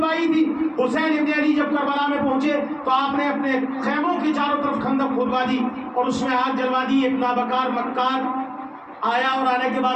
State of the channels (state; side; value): identical; both; correlation 1.00